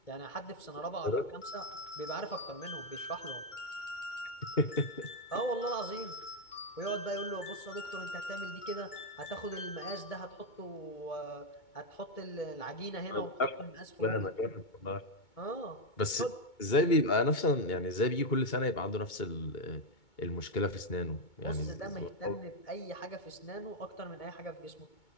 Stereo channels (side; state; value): right; late; 2.2 ms